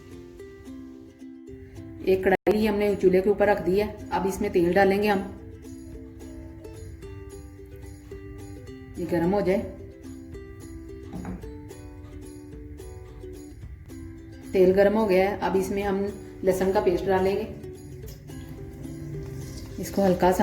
एक कढ़ाई हमने चूल्हे के ऊपर रख दी है। अब इसमें तेल डालेंगे हम। ये गर्म हो जाए। तेल गर्म हो गया है। अब इसमें हम लहसुन का पेस्ट डालेंगे। इसको हल्का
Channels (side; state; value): both; identical; correlation 1.00